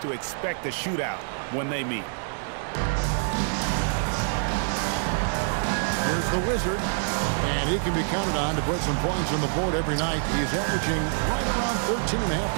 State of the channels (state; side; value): silent; left; 61 dB below the other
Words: to expect a shootout when they meet. Here's the Wizard, and he can be counted on to put some points on the board every night. He's averaging right around 13.5